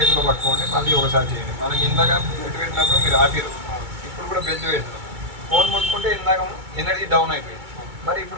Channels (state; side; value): late; left; 2.2 ms